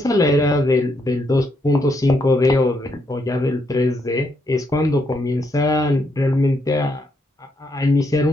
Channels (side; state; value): both; normal; correlation 0.77